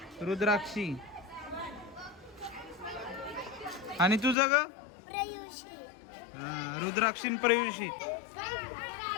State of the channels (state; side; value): drops out; right; at 4.4 s